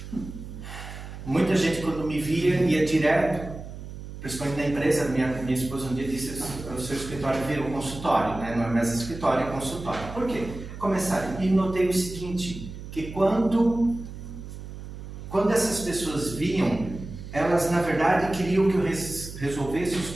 Muita gente, quando me via, ia direto, principalmente na empresa. Minha esposa um dia disse: o seu escritório virou consultório, né? Não é mais escritório, é consultório. Por quê? Começaram. E notei o seguinte, que quando essas pessoas vinham, elas, na verdade, queriam que eu resolvesse os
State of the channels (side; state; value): right; noise; hum, 11 dB below the sound